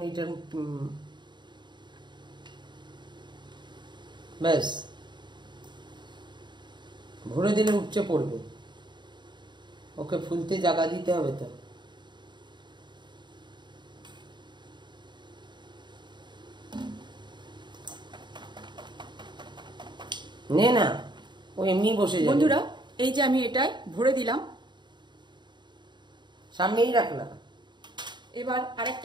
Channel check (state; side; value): late; left; 0.22 ms